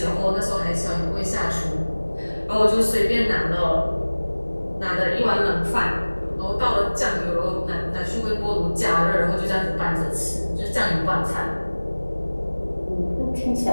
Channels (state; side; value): inverted; both; correlation -1.00